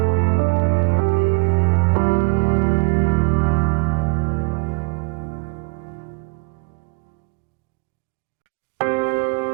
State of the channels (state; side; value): quieter; left; 29.9 dB